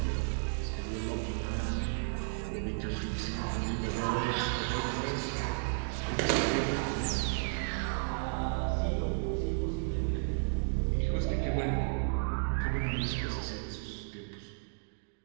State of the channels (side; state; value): left; silent; digital silence